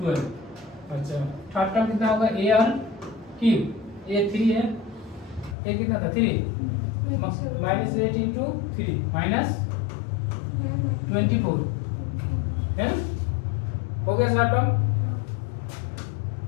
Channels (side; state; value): right; drops out; at 5.6 s